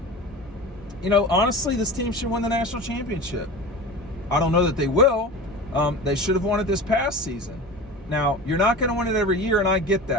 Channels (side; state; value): both; normal; correlation 0.33